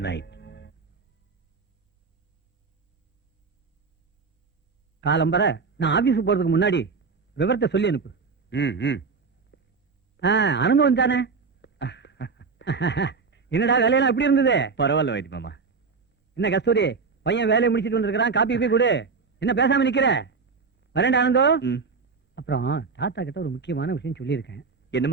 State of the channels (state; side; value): quieter; left; 4.9 dB